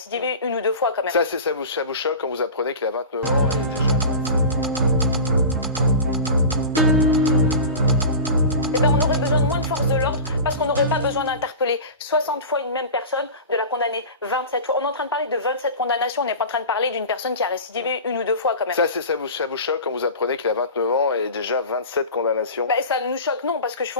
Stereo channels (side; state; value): both; inverted; correlation -0.31